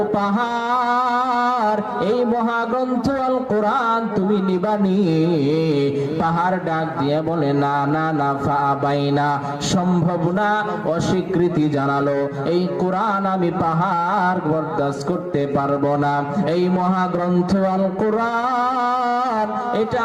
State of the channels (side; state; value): both; identical; correlation 1.00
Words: পাহাড়, এই মহাগ্রন্থ আল কোরআন তুমি নিবানি? পাহাড় ডাক দিয়ে বলে না না না, ফাআবাইনা, সম্ভব না, অস্বীকৃতি জানালো। এই কোরআন আমি পাহাড় বরদাস্ত করতে পারবো না, এই মহাগ্রন্থ আল কোরআন এটা